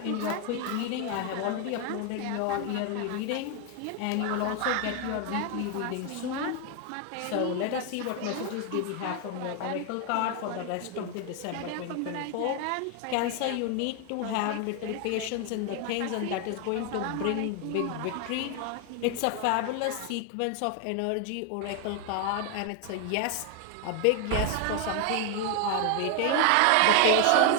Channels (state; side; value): different; both; correlation 0.01